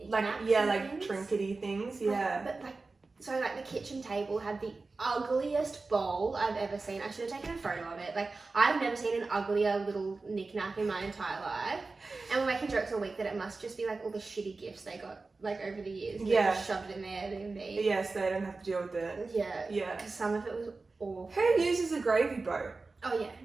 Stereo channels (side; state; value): left; quieter; 3.8 dB